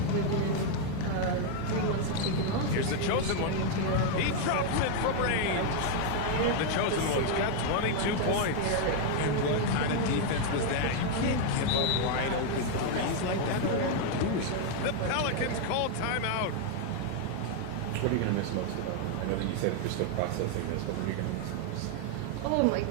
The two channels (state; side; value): different; both; correlation 0.00